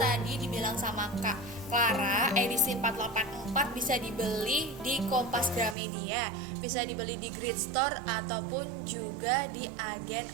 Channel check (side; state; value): left; drops out; at 5.8 s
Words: dibilang sama Kak Clara, edisi 484 bisa dibeli di Kompas Gramedia, bisa dibeli di Grid Store ataupun juga di